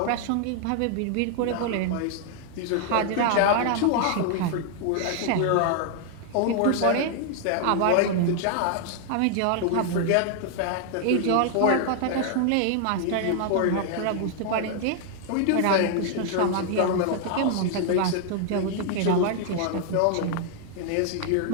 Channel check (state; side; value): different; both; correlation 0.00